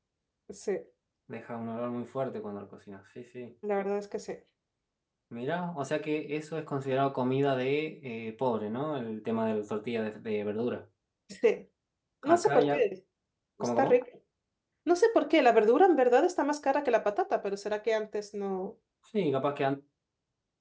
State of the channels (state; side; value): identical; both; correlation 1.00